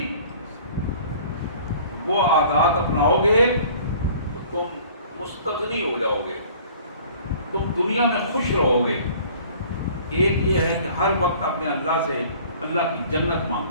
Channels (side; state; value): both; inverted; correlation -0.50